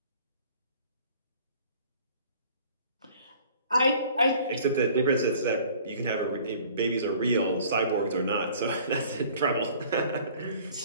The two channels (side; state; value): both; inverted; correlation -0.51